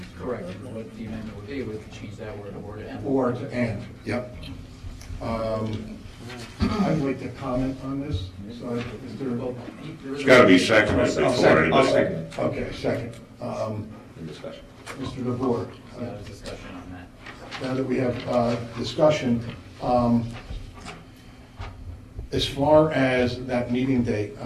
Correct. What the amendment would be, would change that word or to and. Or to and, yep. I'd like to comment on this. So, is there- It's got to be seconded before anybody. I'll second it. Okay, second. Discussion. Mr. DeVore. Discussion on that. Now that we have discussion, as far as that meeting date,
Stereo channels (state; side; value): identical; both; correlation 1.00